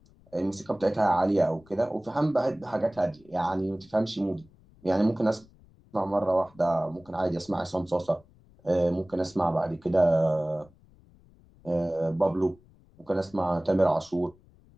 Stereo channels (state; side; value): noise; left; rumble, 28 dB below the sound